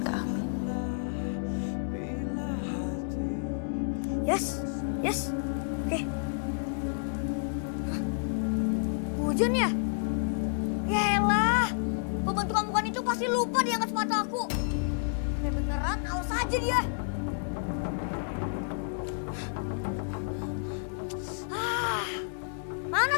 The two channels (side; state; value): right; silent; 58 dB below the other